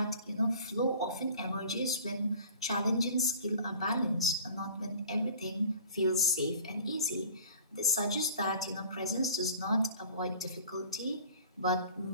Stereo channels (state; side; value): inverted; both; correlation -0.45